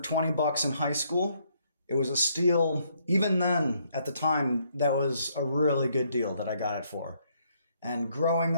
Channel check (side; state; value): both; inverted; correlation -0.70